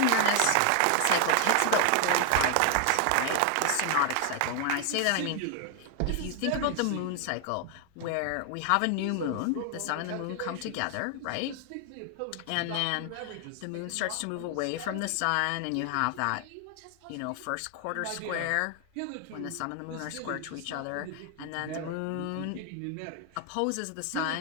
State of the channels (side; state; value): both; different; correlation 0.00